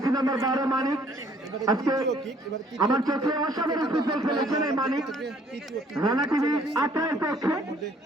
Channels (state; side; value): normal; both; correlation 0.61